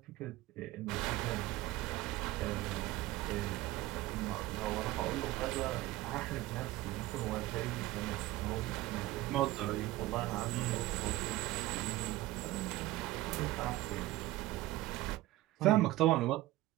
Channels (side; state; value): left; quieter; 17.1 dB